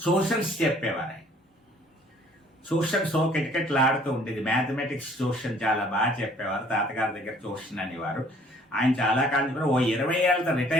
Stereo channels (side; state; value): both; normal; correlation 0.57